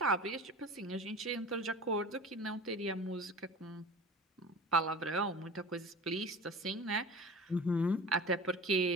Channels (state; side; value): normal; both; correlation 0.37